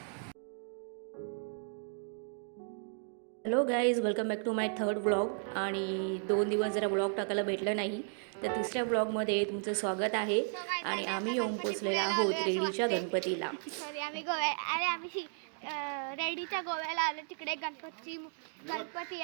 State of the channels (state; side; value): silent; left; 55 dB below the other